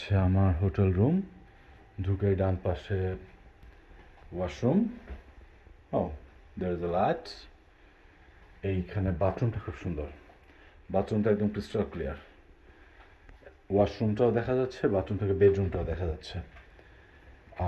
আমার হোটেল রুম। ঢুকেই ডান পাশে washroom. Oh, there is a light. এইখানে বাথরুমটা খুব সুন্দর, বাথরুমটা একদম ক্রিস্টাল ক্লিয়ার। ওয়াশরুমটাও দেখা যাচ্ছে, বাথরুম থেকে বেডরুমটাও দেখা যাচ্ছে।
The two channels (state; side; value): identical; both; correlation 1.00